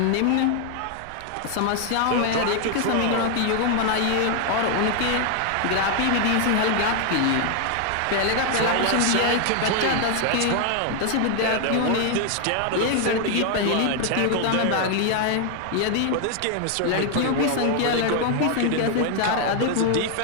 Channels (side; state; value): both; different; correlation 0.00